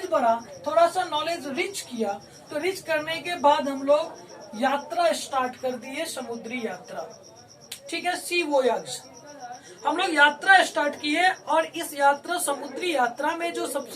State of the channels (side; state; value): both; identical; correlation 1.00